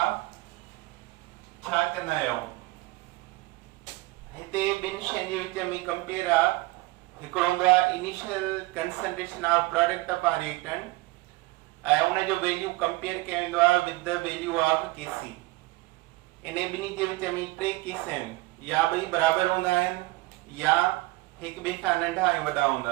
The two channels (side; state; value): left; quieter; 21.3 dB